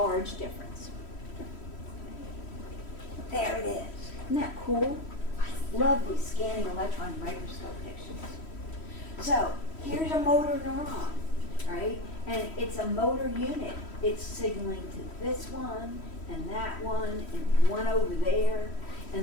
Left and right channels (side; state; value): right; late; 3.1 ms